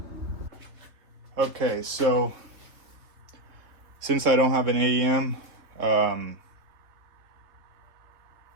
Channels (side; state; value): left; late; 3.3 ms